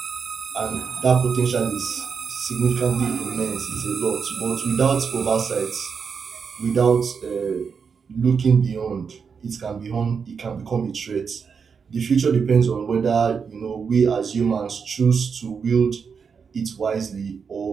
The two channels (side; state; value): left; quieter; 6.0 dB